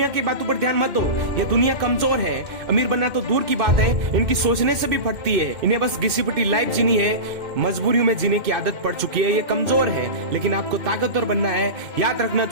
की बातों पर ध्यान मत दो, ये दुनिया कमजोर है। अमीर बनना तो दूर की बात है, इनकी सोचने से भी फटती है। इन्हें बस घिसी पिटी लाइफ जीनी है, मजबूरियों में जीने की आदत पड़ चुकी है। ये कमजोर है, लेकिन आपको ताकतवर बनना है। याद रखना,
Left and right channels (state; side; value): late; left; 2.1 ms